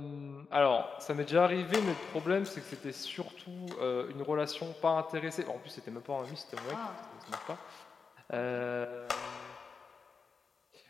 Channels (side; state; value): right; quieter; 5.2 dB